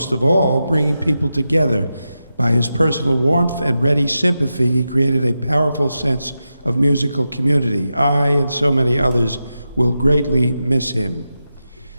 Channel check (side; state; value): both; inverted; correlation -0.90